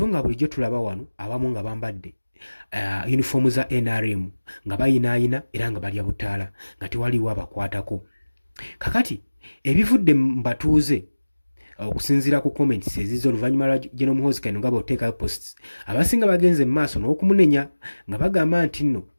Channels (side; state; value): both; inverted; correlation -1.00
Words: nga bulijjo tulaba wano abamu nga bambadde uniform za NRM nga bayinaayina era nga balya butaala nga tewaliwo abakwatako. Kakati ebivudde mu batuuze okusinziira ku comments ezizo oluvannyuma lwa General Muhoozi Kainerugaba oteekayo posts abasinga bagenze mu maaso n'okumunenya nga bagamba nti nno